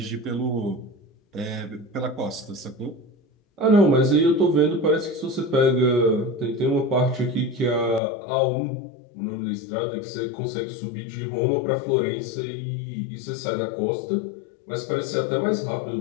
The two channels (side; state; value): right; drops out; at 8.0 s